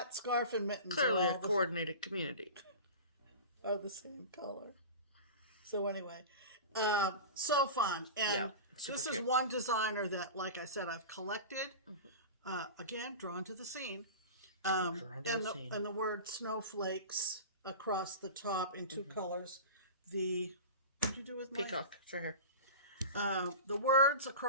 scarf, and mittens. Clearly a coordinated community. Are the same color. So anyway, so fun. And Super this cute. is one designer that, like I said, I've collected. Again, drawn to the scene. And the word snowflakes across the top in two colors. What did you do with my peacock? It's right here. The words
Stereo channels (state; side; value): inverted; both; correlation -0.31